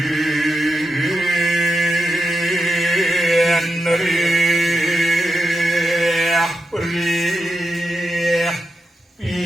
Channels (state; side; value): normal; both; correlation 0.87